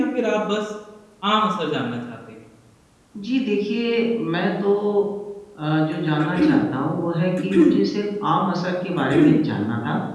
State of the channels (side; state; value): both; identical; correlation 1.00